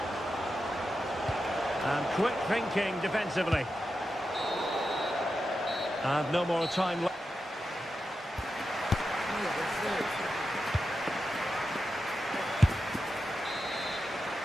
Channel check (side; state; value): both; normal; correlation 0.89